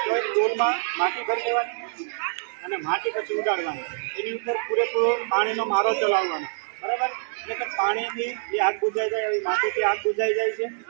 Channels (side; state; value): left; silent; digital silence